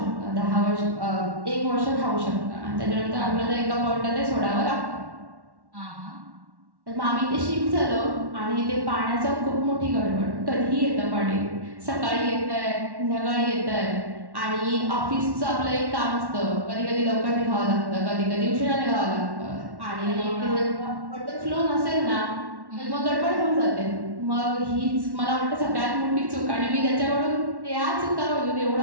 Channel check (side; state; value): left; late; 1.1 ms